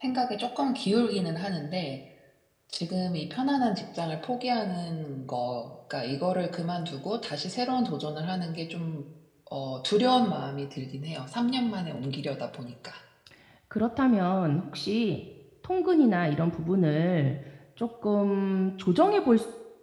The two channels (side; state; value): both; identical; correlation 1.00